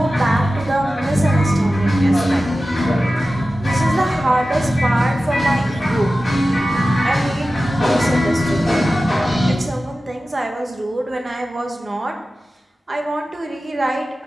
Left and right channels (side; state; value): both; normal; correlation 0.95